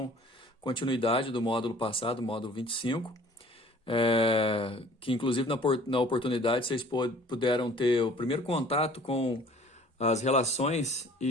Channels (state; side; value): normal; both; correlation 0.51